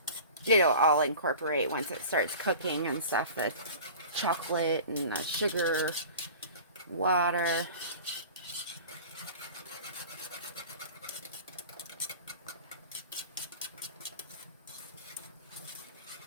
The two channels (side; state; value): both; inverted; correlation -0.39